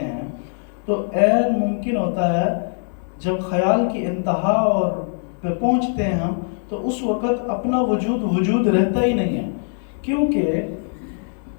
ہیں، تو عین ممکن ہوتا ہے جب خیال کی انتہا اور پہ پہنچتے ہیں ہم، تو اس وقت اپنا وجود رہتا ہی نہیں ہے، کیونکہ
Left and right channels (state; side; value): silent; right; 62 dB below the other